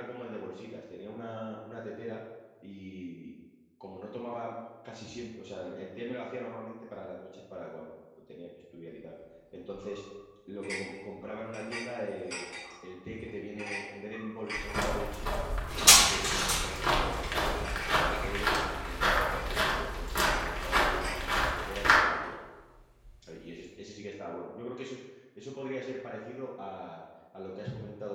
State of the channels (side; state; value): both; identical; correlation 1.00